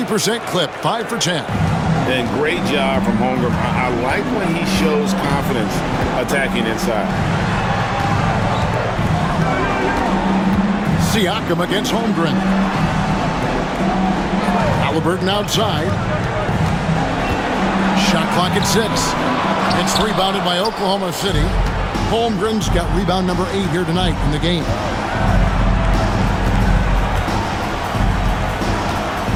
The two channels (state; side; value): identical; both; correlation 1.00